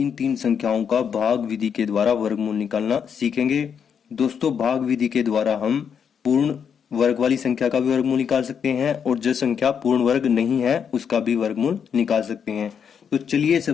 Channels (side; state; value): right; quieter; 7.3 dB